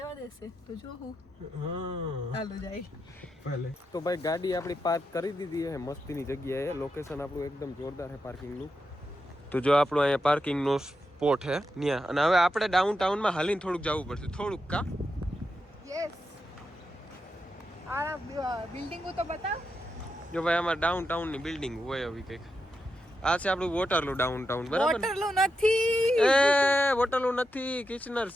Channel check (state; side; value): normal; both; correlation 0.86